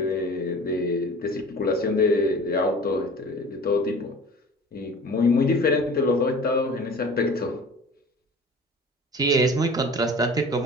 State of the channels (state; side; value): normal; both; correlation 0.42